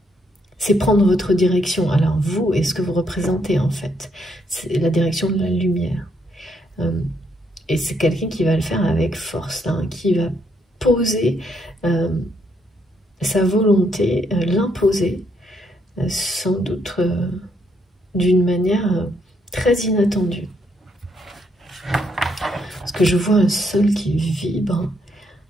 C'est prendre votre direction. Alors vous, et ce que vous représentez en fait, c'est la direction de la lumière. Et c'est quelqu'un qui va le faire avec force, hein, qui va poser sa volonté, l'imposer, sans doute d'une manière très inattendue. Parce que je vois un sol qui vibre.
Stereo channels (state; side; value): normal; both; correlation 0.74